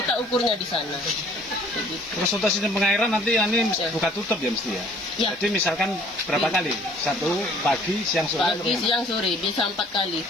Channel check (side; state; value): right; noise; hiss, 29 dB below the sound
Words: ukurnya di sana. Begitu. Terus untuk sistem pengairan nanti ini Ya. buka tutup ya mesti ya? Ya. Jadi misalkan berapa Iya. kali? 1 pagi, siang, sore? Pagi, atau gimana? siang, sore, bisa 4 kali.